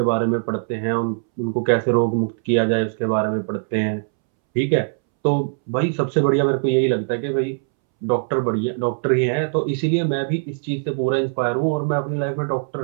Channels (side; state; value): left; silent; 65 dB below the other